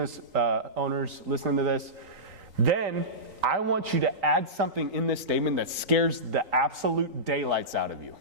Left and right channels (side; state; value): left; late; 3.9 ms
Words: owners listening to this. Then I want you to add something in this statement that scares the absolute daylights out of you,